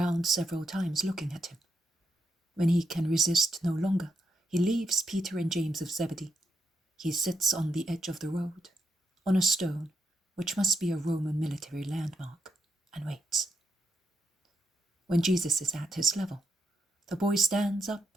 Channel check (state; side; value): normal; both; correlation 0.81